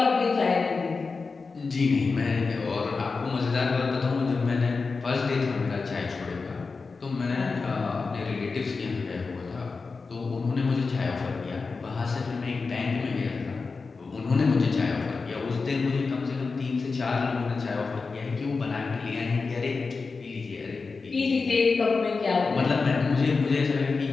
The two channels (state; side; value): quieter; right; 4.4 dB